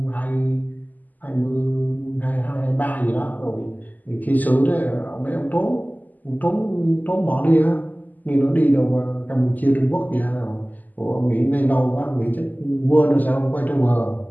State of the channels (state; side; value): late; right; 0.082 ms